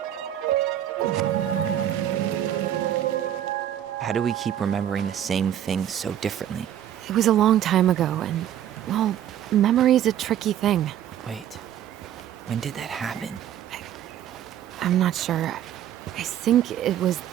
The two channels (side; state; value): left; quieter; 10.9 dB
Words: How do we keep remembering the same thing so differently? It was a long time ago, and, well, memory's a tricky thing. Wait, when did that happen? I'm not sure. I think it was